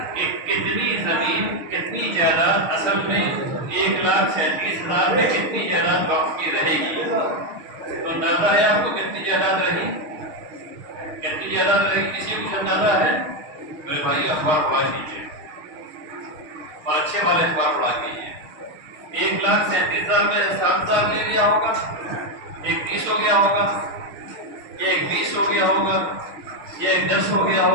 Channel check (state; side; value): late; left; 6.4 ms